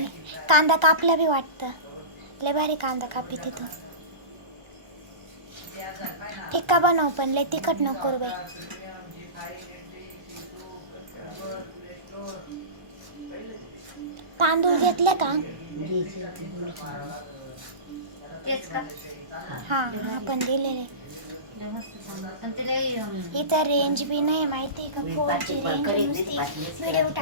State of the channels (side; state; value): left; late; 1.3 ms